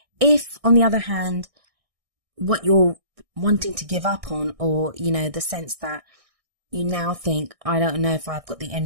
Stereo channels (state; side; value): late; left; 1.6 ms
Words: If, on the other hand, what you're wanting to give up on, or, the sense that you now think, I don't know if I've got the